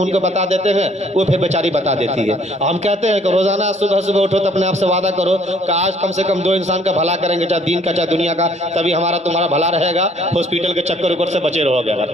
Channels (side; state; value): both; normal; correlation 0.60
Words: ان کو بتا دیتے ہیں، وہ پھر بیچاری بتا دیتی ہے۔ ہم کہتے ہیں کہ روزانہ صبح صبح اٹھو تو اپنے آپ سے وعدہ کرو کہ آج کم سے کم 2 انسان کا بھلا کریں گے، چاہے دین کا چاہے دنیا کا، تبھی ہمارا تمہارا بھلا رہے گا، ہاسپٹل کے چکر اوپر سے بچے رہو گے اگر،